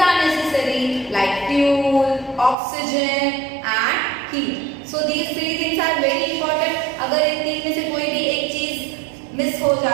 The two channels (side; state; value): left; drops out; at 2.6 s